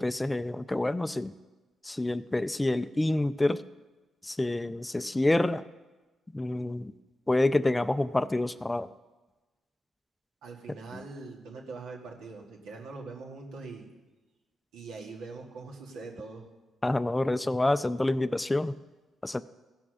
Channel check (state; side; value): normal; both; correlation 0.98